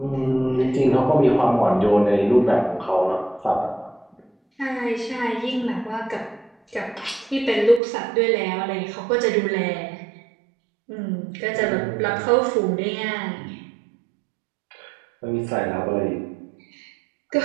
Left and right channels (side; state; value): left; drops out; at 7.8 s